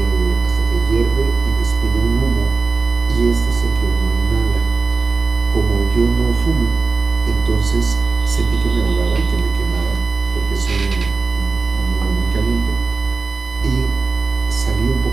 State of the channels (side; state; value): left; quieter; 4.3 dB